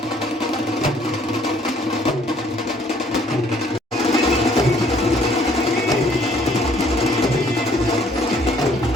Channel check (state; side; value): normal; both; correlation 0.61